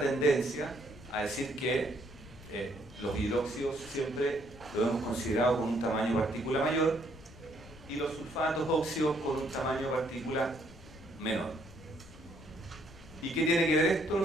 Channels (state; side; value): noise; left; rumble, 19 dB below the sound